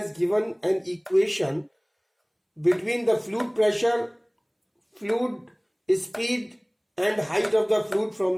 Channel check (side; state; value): both; identical; correlation 1.00